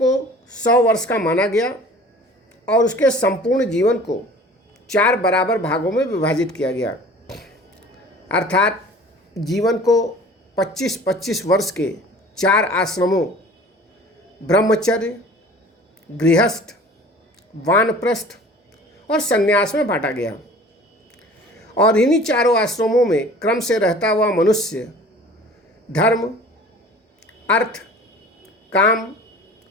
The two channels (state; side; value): normal; both; correlation 0.45